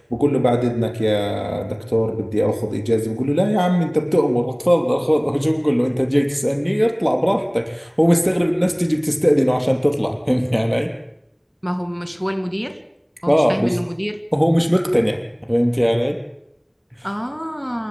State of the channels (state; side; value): identical; both; correlation 1.00